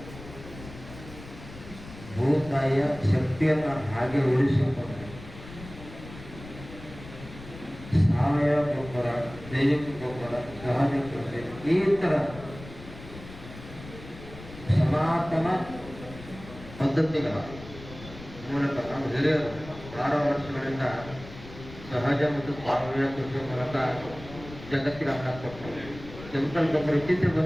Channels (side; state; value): left; noise; rumble, 15 dB below the sound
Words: ಭೂತಾಯಿಯ ಶಕ್ತಿಯನ್ನು ಹಾಗೆ ಉಳಿಸಿಕೊಂಡು ಸಾವಯವ ಗೊಬ್ಬರ, ಜೈವಿಕ ಗೊಬ್ಬರ, ಸಹಜ ಕೃಷಿ, ಈ ಥರ ಸನಾತನ ಪದ್ಧತಿಗಳ ಮೂಲಕ ನಾವು ಹಿರಿಯರು 6 ವರ್ಷಗಳಿಂದ ಸಹಜ ಮತ್ತು ಸಾವಯವ ಕೃಷಿ ಮೂಲಕ ಜಗತ್ತಿಗೆ ಅನ್ನ ಕೊಟ್ಟು ಕೆಮಿಕಲ್ ಗೊಬ್ಬರ ಇತ್ತೀಚೆಗೆ